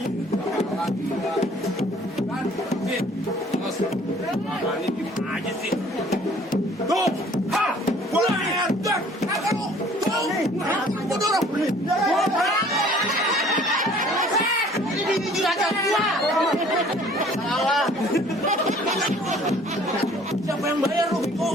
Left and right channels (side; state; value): both; normal; correlation 0.54